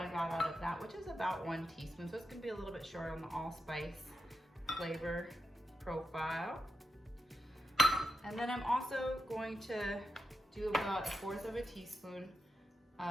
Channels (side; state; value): both; normal; correlation 0.87